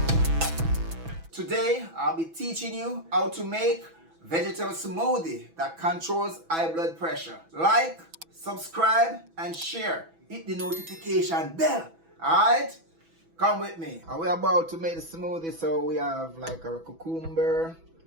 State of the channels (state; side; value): late; left; 6.1 ms